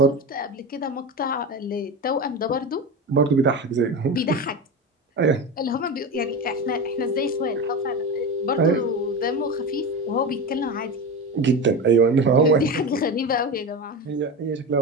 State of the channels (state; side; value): normal; both; correlation 0.23